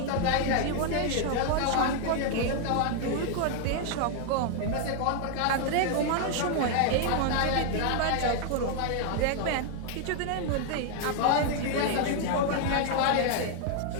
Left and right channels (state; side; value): different; both; correlation 0.00